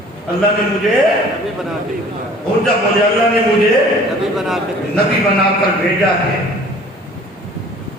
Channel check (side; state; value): both; normal; correlation 0.50